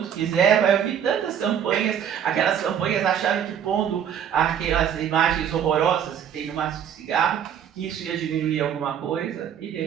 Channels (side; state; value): left; quieter; 8.8 dB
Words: quiser, vai ouvir tantas campanhas, aquelas campanhas acharam que pondo aquelas imagens horrorosas que tem no maço de cigarro, que isso ia diminuir alguma coisa, e de